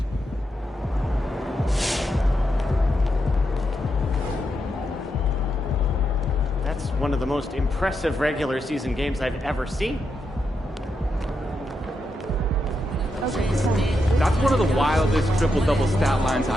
That's one of the most impressive regular season games I've ever seen. That's one of the wildest triple-double stat lines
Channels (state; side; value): normal; both; correlation 0.84